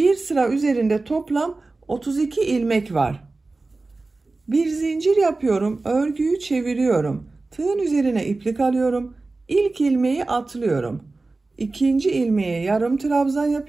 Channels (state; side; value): quieter; left; 3.4 dB